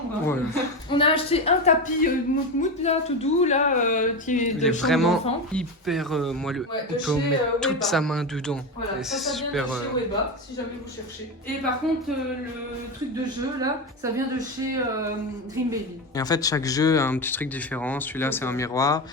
Ouais. On a acheté un tapis mout là, tout doux, là, qui est Il de est chambre vraiment d'enfant. hyper moelleux. Ouais, On de peut chez, mettre toute Weba. sa main dedans. Voilà, Et ça c'est vient super. de chez Weba, si jamais vous cherchez. Et par contre, le truc de jeu, là, ça vient de chez Dream Baby. Et en fait, chaque jeu a un petit truc différent. Celui-là, c'est un miroir.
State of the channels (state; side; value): normal; both; correlation 0.18